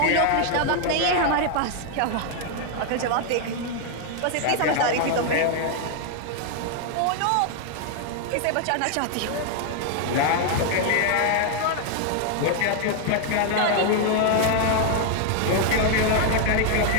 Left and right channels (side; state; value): both; different; correlation 0.00